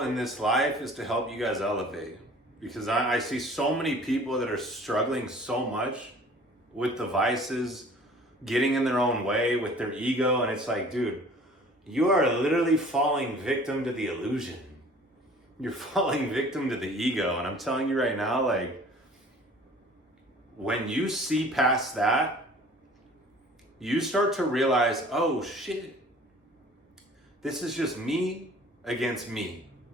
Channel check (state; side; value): normal; both; correlation 0.49